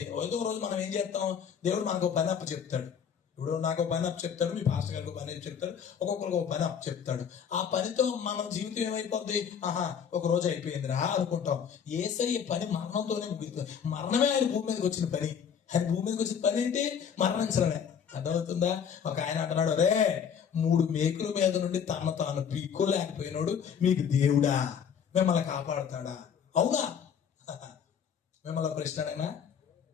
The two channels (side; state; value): right; quieter; 7.6 dB